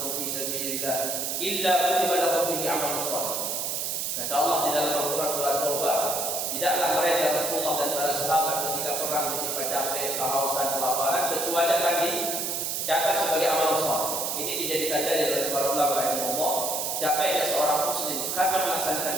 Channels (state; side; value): noise; right; hiss, 1 dB below the sound